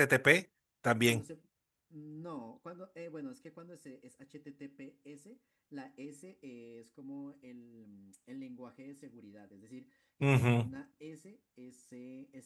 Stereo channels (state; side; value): identical; both; correlation 1.00